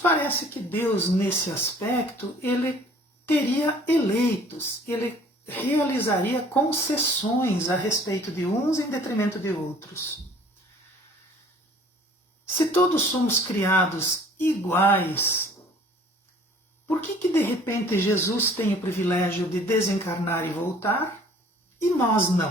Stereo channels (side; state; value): both; normal; correlation 0.53